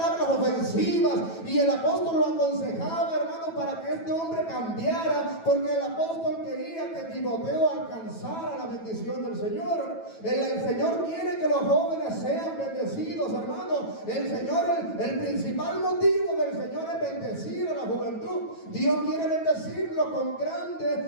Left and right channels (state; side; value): late; right; 9.1 ms